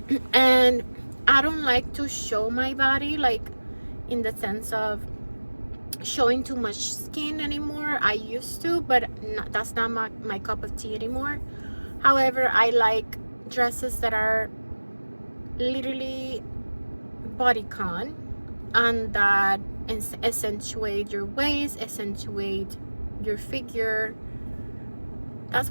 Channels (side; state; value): both; inverted; correlation -1.00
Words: And I don't like to show my body, like in the sense of showing too much skin anymore. I used to, but that's not my cup of tea anymore. However, I like dresses that are literally bodycon, and that accentuate your waist, accentuate your figure. That's